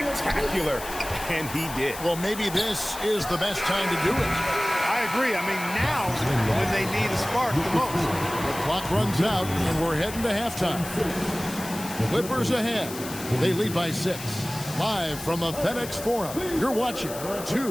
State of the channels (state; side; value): noise; left; hiss, 12 dB below the sound